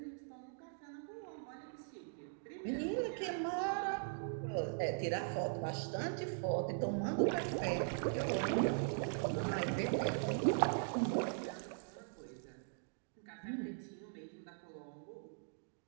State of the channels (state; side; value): silent; left; digital silence